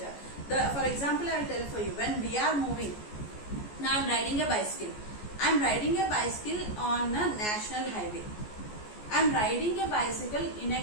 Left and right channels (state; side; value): late; right; 14 ms